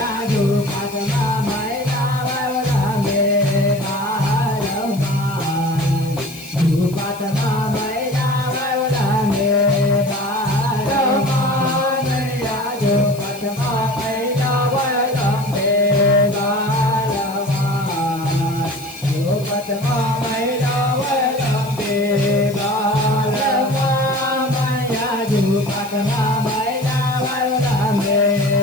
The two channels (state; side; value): noise; left; hiss, 18 dB below the sound